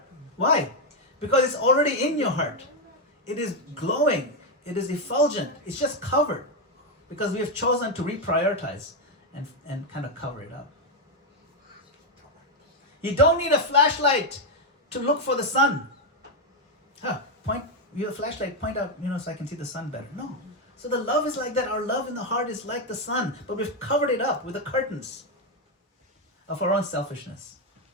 Why? Because it's already in your heart. It is glowing. It is effulgent. It's just covered. Because we have chosen to reprioritize and kind of cover it up. You don't need a flashlight to look for the sun. You have a flashlight, point out, so I can see the sun better. No. So the love is like that. Our love in the heart is like the sun, but we've covered it up with the curtains of our own selfishness.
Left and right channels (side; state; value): both; normal; correlation 0.04